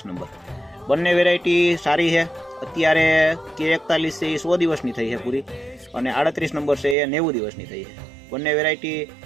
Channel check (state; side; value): drops out; left; at 7.0 s